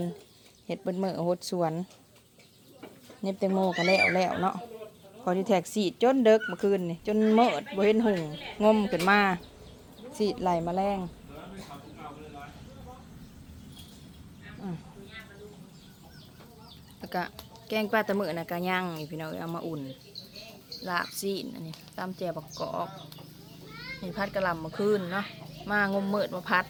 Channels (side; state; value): both; identical; correlation 1.00